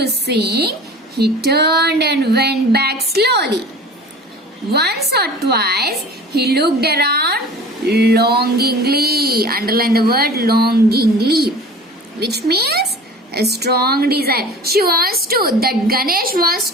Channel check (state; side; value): normal; both; correlation 0.41